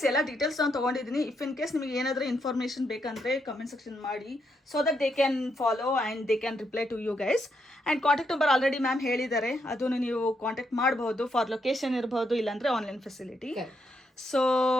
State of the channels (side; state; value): both; normal; correlation 0.79